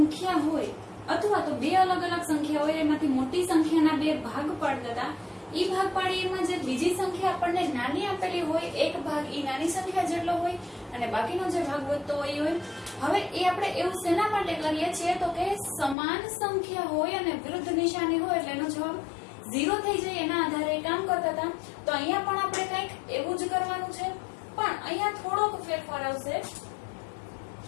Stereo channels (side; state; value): right; drops out; at 16.0 s